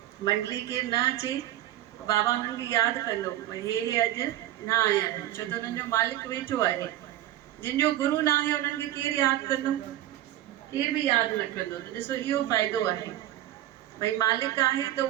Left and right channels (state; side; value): quieter; left; 13.8 dB